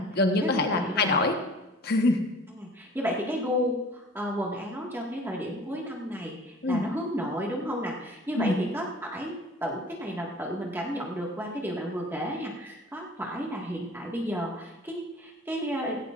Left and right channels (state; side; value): normal; both; correlation 0.46